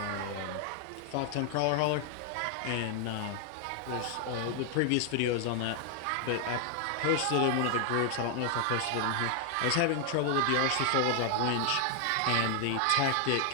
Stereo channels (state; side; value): different; both; correlation 0.00